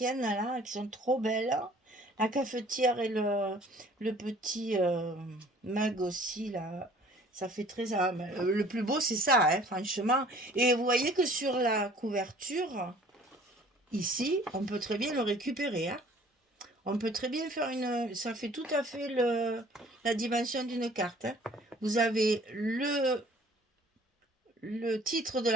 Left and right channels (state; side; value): normal; both; correlation 0.53